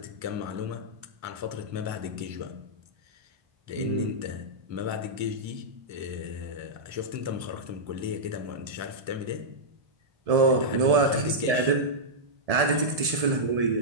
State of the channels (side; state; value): left; late; 1.7 ms